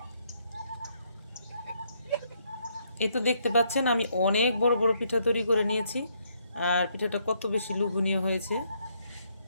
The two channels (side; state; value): both; inverted; correlation -0.72